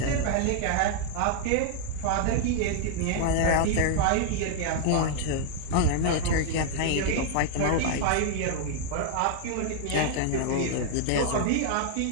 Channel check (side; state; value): both; different; correlation 0.00